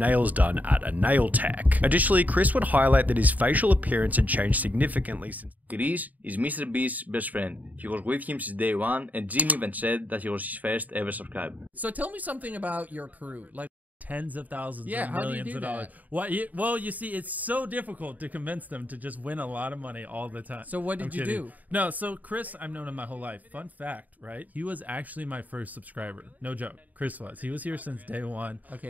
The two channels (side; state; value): left; late; 0.077 ms